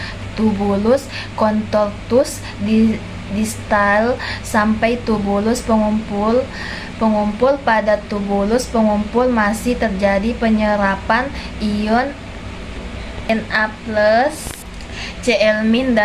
tubulus contortus distal sampai tubulus pengumpul. Pada tubulus pengumpul masih terjadi penyerapan ion Na+, Cl-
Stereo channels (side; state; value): both; identical; correlation 1.00